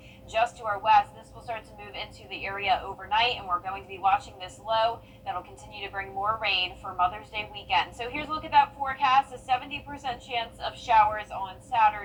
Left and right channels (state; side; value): identical; both; correlation 1.00